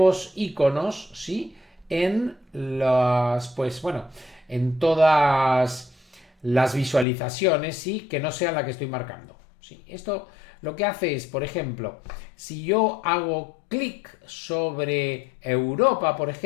iconos, ¿sí? En las, pues bueno, en todas las visualizaciones, ¿sí? Que no sean la que estoy marcando, ¿sí? Esto lo que hace es, por ejemplo, si yo hago clic sobre Europa, por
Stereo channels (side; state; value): right; drops out; at 7.1 s